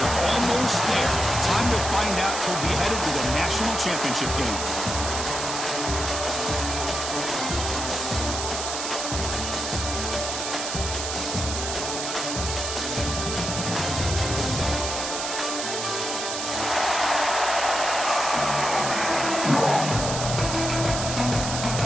almost there. Time to find out who'll be headed to the national championship game.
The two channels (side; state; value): right; noise; hiss, 4 dB below the sound